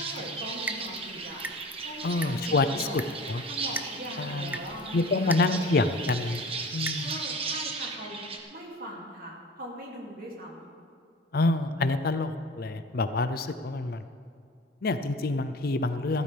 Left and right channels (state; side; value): normal; both; correlation 0.39